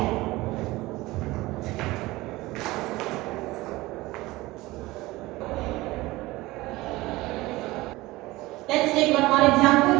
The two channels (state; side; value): quieter; left; 19.7 dB